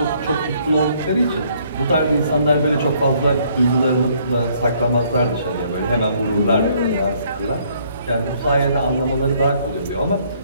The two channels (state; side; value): inverted; both; correlation -0.65